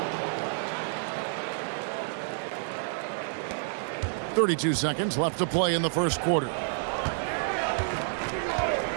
32 seconds left to play in the first quarter.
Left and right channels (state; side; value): silent; left; digital silence